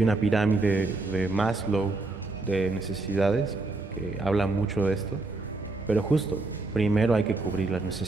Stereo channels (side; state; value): left; quieter; 3.2 dB